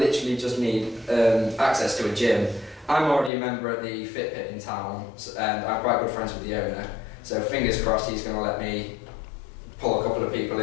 just need access to a gym. I'm already a member at the Fit Pit in town, and I'm quite good friends with the owner. So fingers crossed he's going to let me pull a couple of people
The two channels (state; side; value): drops out; right; at 3.3 s